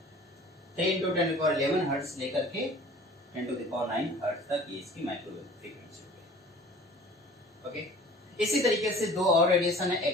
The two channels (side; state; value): both; normal; correlation 0.47